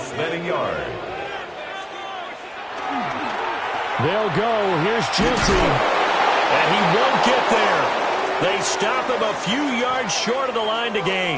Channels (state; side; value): identical; both; correlation 1.00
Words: than a yard. They'll go. Here's Jeanty. And he won't get there. They stop him a few yards short of the line to